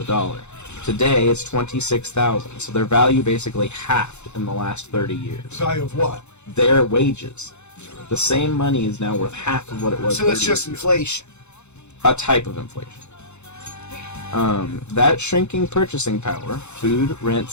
dollar. Today, it's 26,000, so their value basically halved in the last 30 years. Value of what? Their wages. The same money is now worth half of what it was. So 30 that's just years ago. inflation. A type of inflation. That shrinking purchasing power, food,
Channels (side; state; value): right; late; 0.82 ms